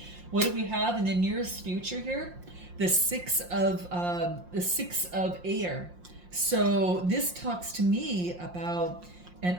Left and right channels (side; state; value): left; late; 5.6 ms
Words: What do we have in the nearest future here? The six of air. So this talks to me about an